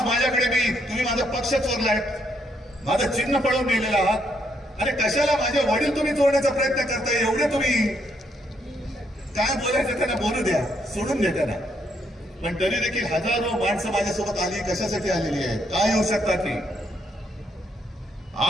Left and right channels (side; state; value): both; normal; correlation 0.74